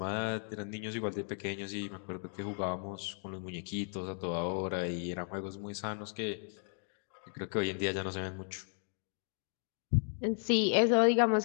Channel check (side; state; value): right; silent; 54 dB below the other